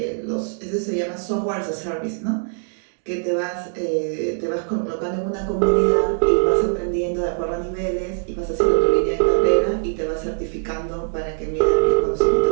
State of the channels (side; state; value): left; silent; digital silence